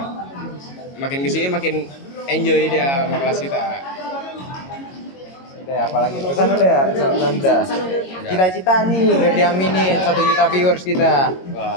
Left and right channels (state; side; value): late; right; 22 ms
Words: Makin kesini makin enjoy dia sama kelas kita. Udah apalagi pesan udah. Cita-cita nih biar diaminin 1 juta viewers kita.